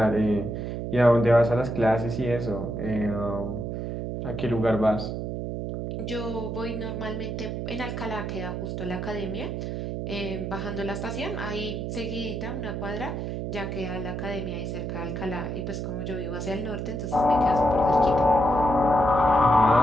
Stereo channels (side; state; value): right; noise; hum, 4 dB below the sound